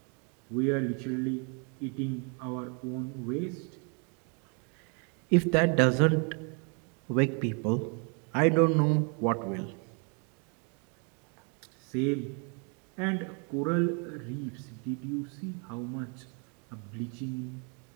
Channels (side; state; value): left; quieter; 37.2 dB